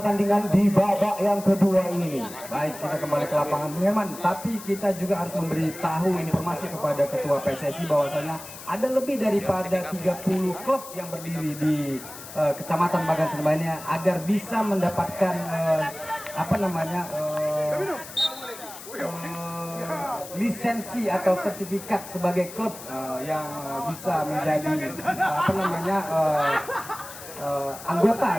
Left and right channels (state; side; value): noise; left; hiss, 14 dB below the sound